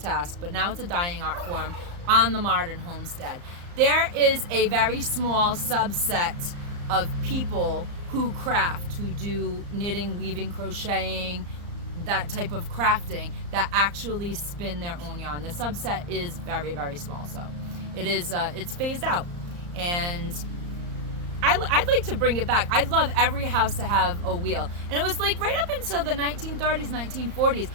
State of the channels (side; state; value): left; late; 34 ms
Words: but now it's a dying art form on the modern homestead. There is a very small subset of people who craft, who do knitting, weaving, crocheting, that type of crafting, that actually spin their own yarn. The subset is very, very small, so it is it's phased out. And I'd like to bring it back. I'd love every house to have a wheel. And it was like right up until the 1930s, 1940s,